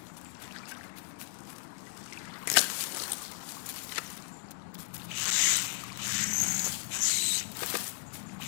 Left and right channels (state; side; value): silent; right; digital silence